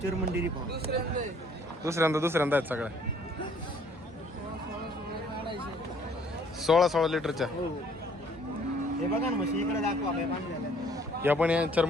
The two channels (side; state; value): both; normal; correlation 0.60